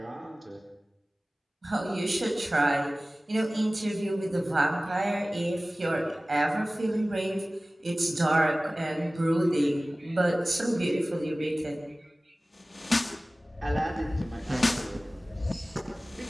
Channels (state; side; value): normal; both; correlation 0.98